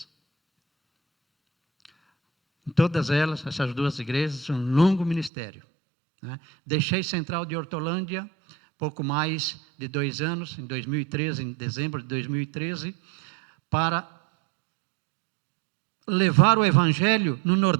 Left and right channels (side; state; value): left; drops out; at 5.3 s